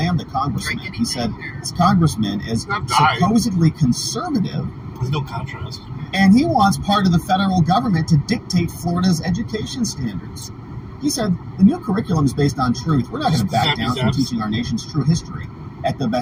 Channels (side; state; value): both; identical; correlation 1.00